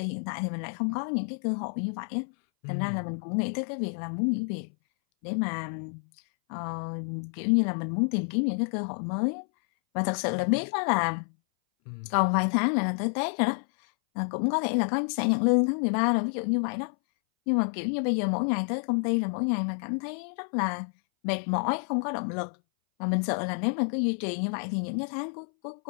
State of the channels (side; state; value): right; silent; 59 dB below the other